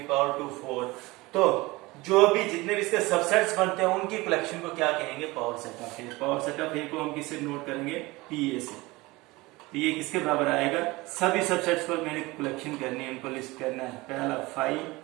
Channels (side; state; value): left; quieter; 21.8 dB